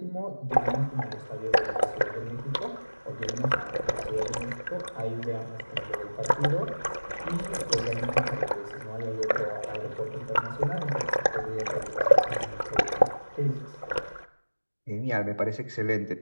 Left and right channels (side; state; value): both; inverted; correlation -1.00